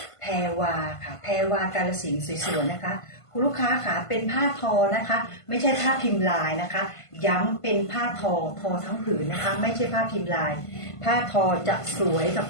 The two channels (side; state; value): right; late; 1.5 ms